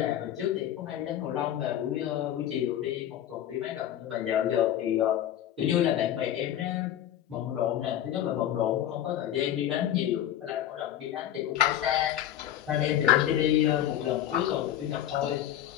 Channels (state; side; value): quieter; right; 11.4 dB